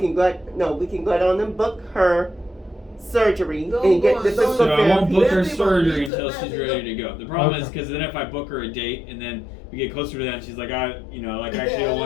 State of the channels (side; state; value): right; drops out; at 6.1 s